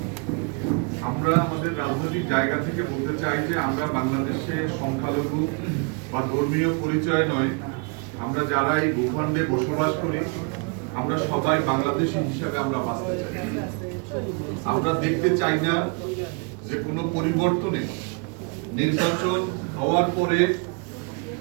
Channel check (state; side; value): quieter; left; 34.3 dB